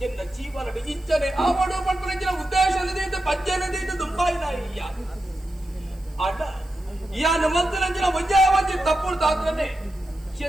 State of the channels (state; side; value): noise; right; hiss, 28 dB below the sound